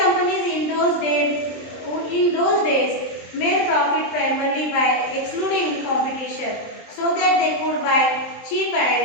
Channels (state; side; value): late; right; 23 ms